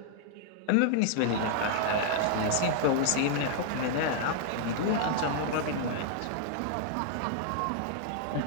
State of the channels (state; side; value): different; both; correlation -0.01